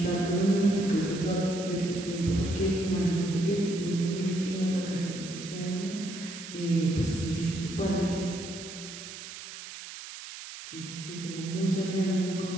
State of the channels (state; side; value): noise; right; hiss, 12 dB below the sound